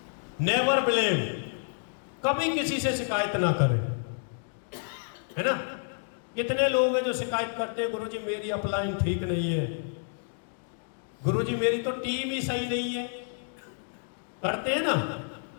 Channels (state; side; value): silent; right; digital silence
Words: नेवर ब्लेम, कभी किसी से शिकायत ना करें, है ना? कितने लोग हैं जो शिकायत करते हैं, गुरुजी मेरी अपलाइन ठीक नहीं है, गुरुजी मेरी तो टीम ही सही नहीं है, करते हैं ना,